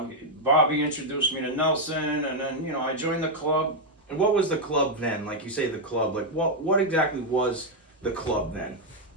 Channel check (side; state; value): both; normal; correlation 0.00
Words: Bobby introduced me to Nelson, and then I joined the club. And what was the club then? Like you say, the club. Like what exactly was the club then?